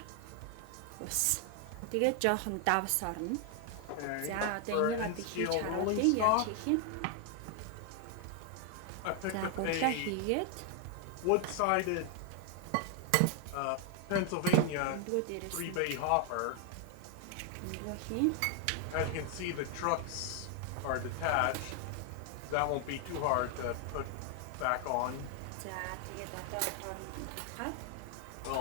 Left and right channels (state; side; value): different; both; correlation 0.00